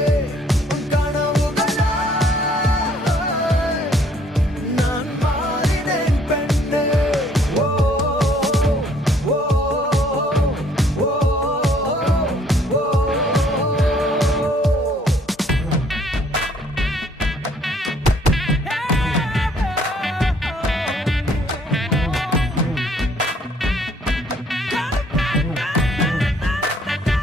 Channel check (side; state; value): both; normal; correlation 0.62